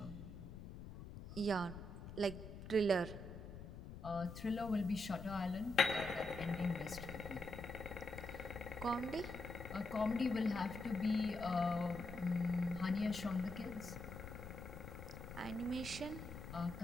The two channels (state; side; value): noise; left; rumble, 11 dB below the sound